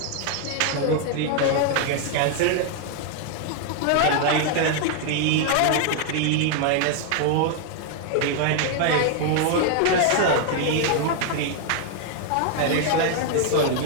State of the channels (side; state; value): both; different; correlation 0.00